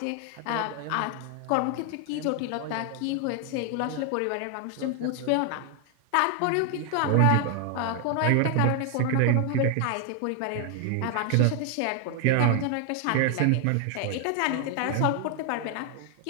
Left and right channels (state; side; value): different; both; correlation 0.00